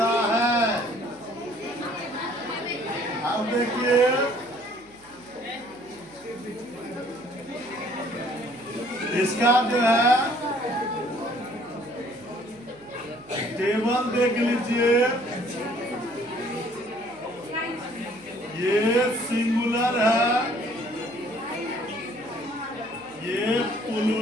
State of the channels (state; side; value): noise; right; hum, 27 dB below the sound